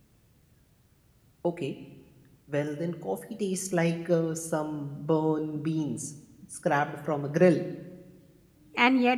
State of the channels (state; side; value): identical; both; correlation 1.00